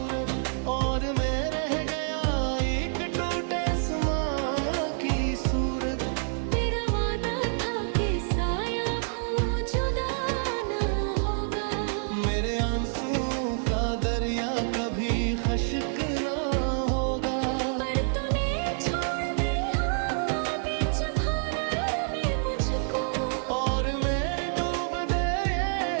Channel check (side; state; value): left; silent; 59 dB below the other